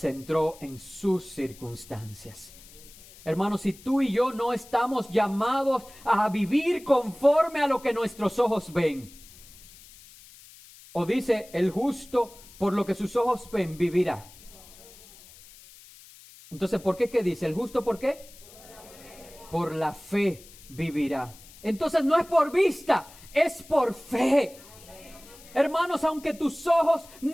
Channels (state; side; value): noise; left; hiss, 21 dB below the sound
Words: en sus circunstancias. Hermanos, si tú y yo no estamos llamados a vivir conforme a lo que nuestros ojos ven, o dice el justo, por lo que sus ojos ven, vivirá. Entonces, ¿por qué? ¿Qué dice? ¿El justo por qué? Por la fe vivirá. Entonces no es por vista, es por fe. Hermanos, aunque tus ojos